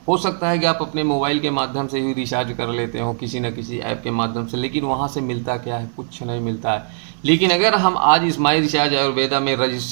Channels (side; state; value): left; silent; 59 dB below the other